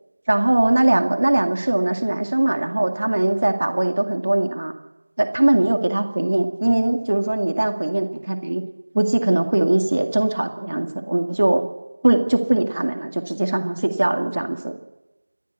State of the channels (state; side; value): inverted; both; correlation -1.00